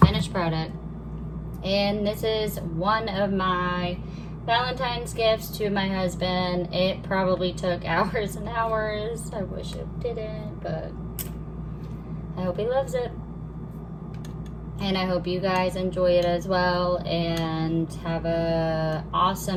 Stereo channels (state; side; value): identical; both; correlation 1.00